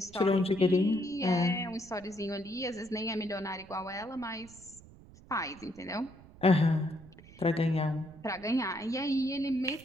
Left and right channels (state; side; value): noise; right; rumble, 21 dB below the sound